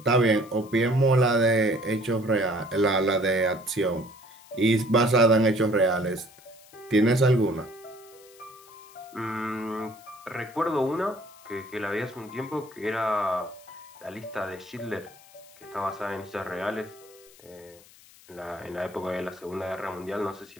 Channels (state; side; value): noise; left; hiss, 24 dB below the sound